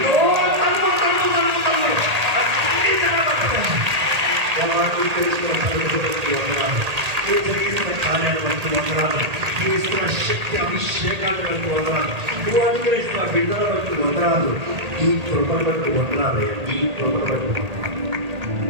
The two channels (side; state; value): left; late; 1.8 ms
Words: ఇస్తున్న శక్తి అభిషేకాలు బట్టి వందనాలు. నువ్వు అనుగ్రహిస్తున్న బిడ్డల బట్టి వందనాలు. ఈ కృపను బట్టి వందనాలు. ఈ కృపను బట్టి వందనాలు.